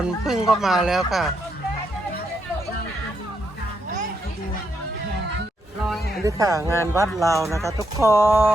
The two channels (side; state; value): both; normal; correlation 0.79